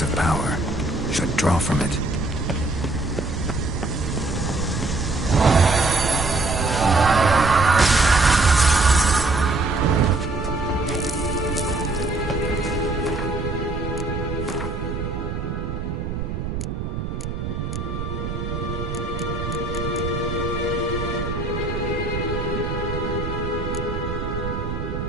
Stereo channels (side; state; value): right; noise; rumble, 4 dB below the sound